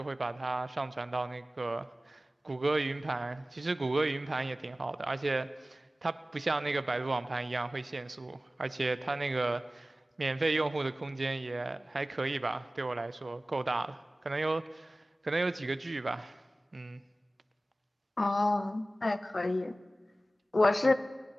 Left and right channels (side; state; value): both; normal; correlation 0.97